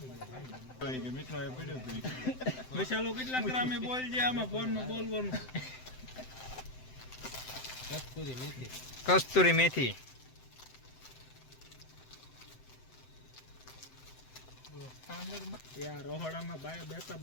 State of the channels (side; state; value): right; late; 7.8 ms